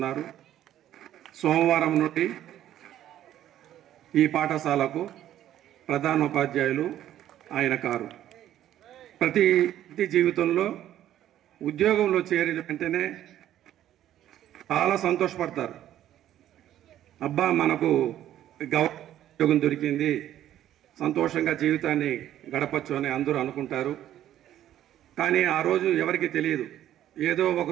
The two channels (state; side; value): quieter; left; 12.0 dB